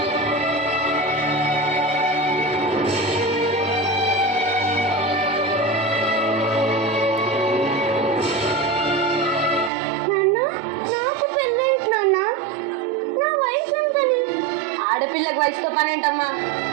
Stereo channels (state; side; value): drops out; left; at 9.7 s